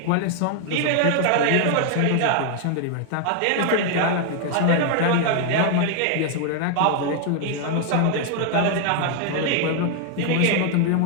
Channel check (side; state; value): both; different; correlation 0.00